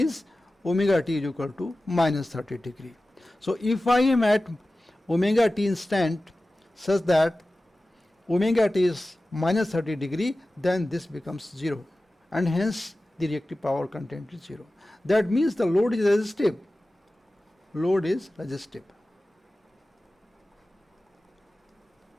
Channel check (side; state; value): both; normal; correlation 0.96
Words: omega t is equal to minus 30 degree. So if I am at omega t instant such that omega t is minus 30 degree, then this becomes 0 and hence the reactive power content is 0. That means the load is resistive. Load is resistive.